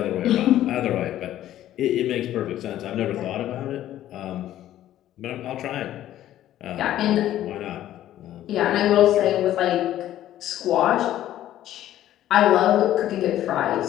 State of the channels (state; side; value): quieter; right; 12.9 dB